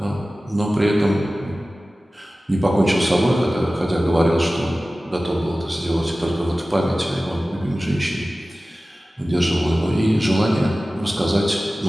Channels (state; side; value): normal; both; correlation 0.96